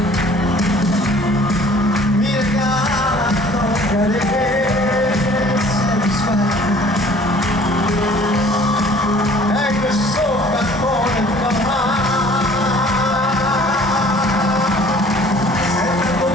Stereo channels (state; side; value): normal; both; correlation 0.52